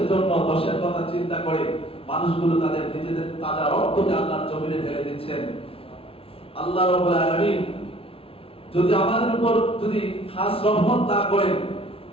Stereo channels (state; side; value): late; right; 0.27 ms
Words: জন্য দেশের কথা চিন্তা করে মানুষগুলো তাদের নিজেদের তাজা রক্তকে আল্লাহর জমিনে ঢেলে দিচ্ছেন। আল্লাহ রাব্বুল আলামিন যদি আমাদের উপর যদি খাস রহমত না করেন,